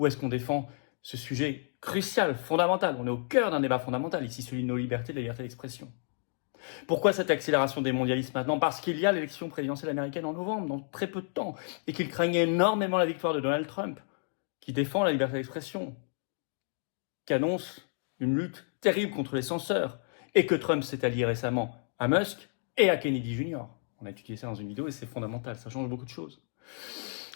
est-ce qu'on défend ce sujet crucial, fondamental? On est au cœur d'un débat fondamental ici, celui de nos libertés, de la liberté d'expression. Pourquoi cette accélération des mondialistes maintenant? Parce qu'il y a l'élection présidentielle américaine en novembre, dans très peu de temps, et qu'il craignait énormément la victoire de Donald Trump, qui défend la liberté d'expression, qui annonce une lutte terrible contre les censeurs, et que Trump s'est allié récemment à Musk et à Kennedy Jr. On a étudié ça dans une vidéo et c'est fondamental, ça change beaucoup de choses.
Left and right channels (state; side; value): silent; right; digital silence